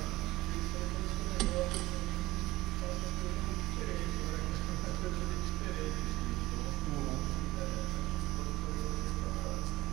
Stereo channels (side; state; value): left; quieter; 18.2 dB